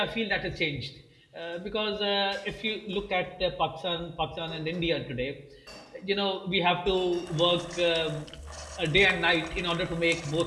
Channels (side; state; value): both; identical; correlation 1.00